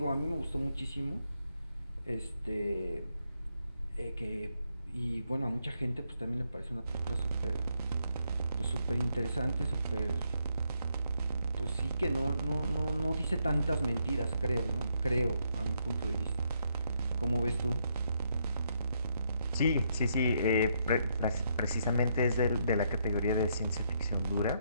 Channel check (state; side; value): inverted; both; correlation -0.76